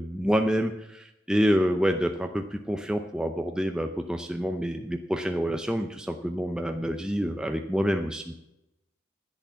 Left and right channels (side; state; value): both; normal; correlation 0.91